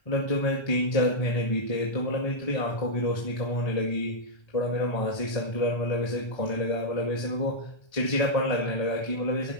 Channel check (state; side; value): late; right; 1.3 ms